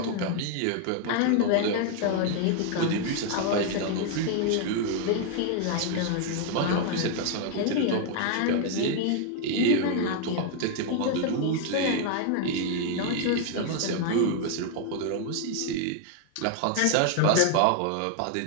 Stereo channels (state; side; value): different; both; correlation 0.00